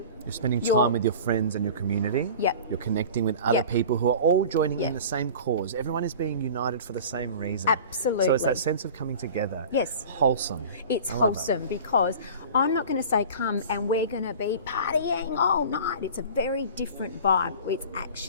You're spending You're- time with your friends and your community. Yep. You're connecting with other Yep. people who are all joining in Yep. the same cause. Everyone is being united for the same reason. Absolutely. So it's that sense of coming together. Yes. Wholesome. It's I love it. wholesome because I'm not going to say come and we're going to be partying all night. It's a very different vibe. It's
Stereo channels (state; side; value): inverted; both; correlation -0.39